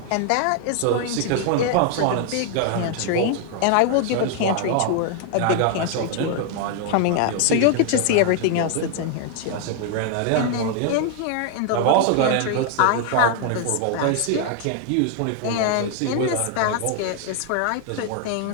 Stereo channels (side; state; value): both; different; correlation 0.00